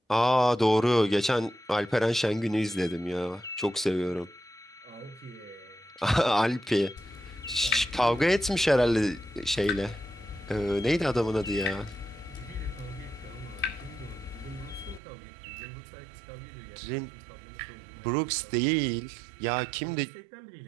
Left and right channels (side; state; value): left; drops out; at 15.0 s